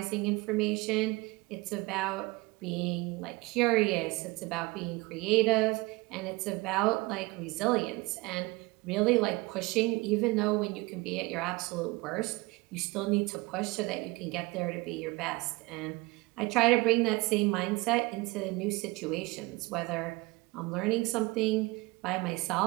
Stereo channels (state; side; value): quieter; left; 23.3 dB